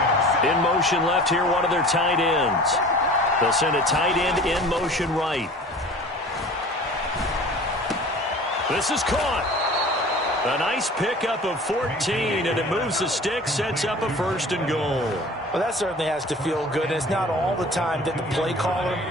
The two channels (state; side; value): normal; both; correlation 0.43